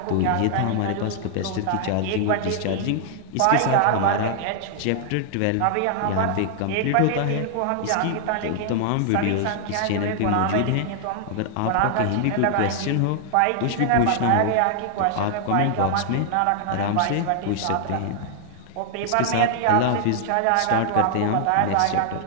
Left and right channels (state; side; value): different; both; correlation -0.01